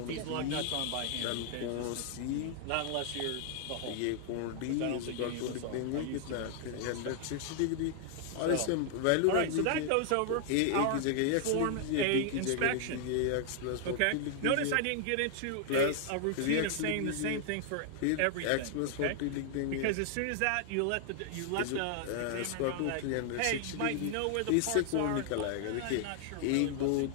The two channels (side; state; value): both; different; correlation 0.00